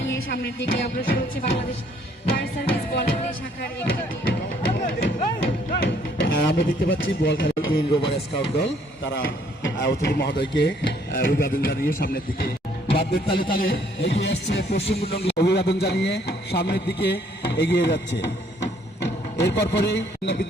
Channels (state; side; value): normal; both; correlation 0.64